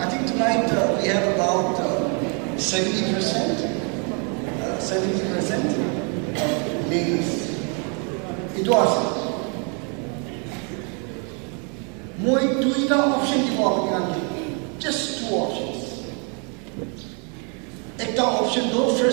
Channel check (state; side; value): quieter; left; 37.0 dB